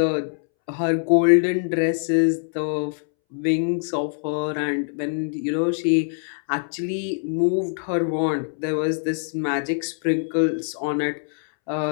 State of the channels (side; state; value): right; silent; 63 dB below the other